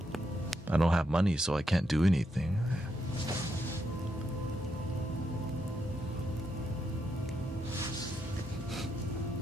I don't have money, so I can't do anything.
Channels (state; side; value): normal; both; correlation 0.81